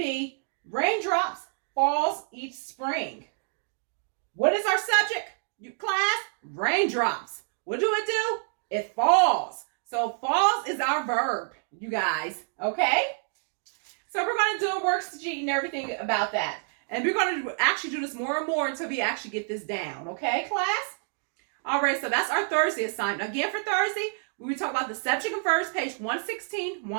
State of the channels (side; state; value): left; silent; 59 dB below the other